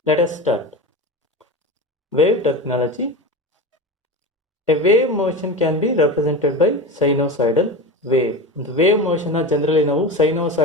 Let us start. Wave terminology. A wave motion can be represented by sinusoidal wave. ಒಂದು wave motion generally ನಾವು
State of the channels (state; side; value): normal; both; correlation 0.26